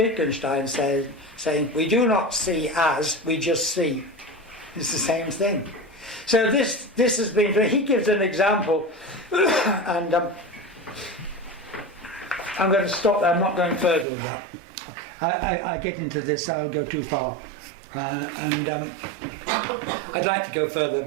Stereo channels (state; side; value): drops out; left; at 14.1 s